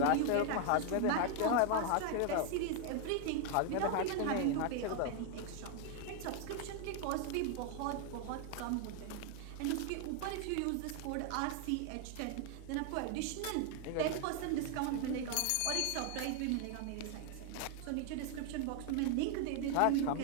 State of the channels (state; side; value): different; both; correlation 0.00